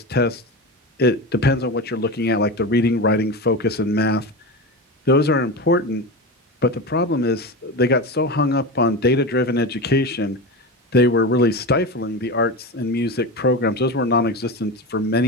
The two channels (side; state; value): both; normal; correlation 0.23